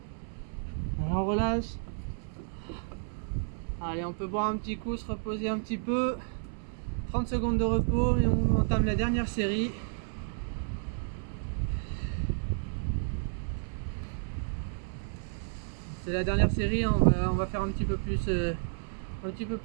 Alors on relâche. Allez, on peut boire un petit coup, se reposer un petit peu. 30 secondes de repos et on entame la dernière série. C'est la dernière série, hein. On va faire un petit peu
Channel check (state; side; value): silent; left; 57 dB below the other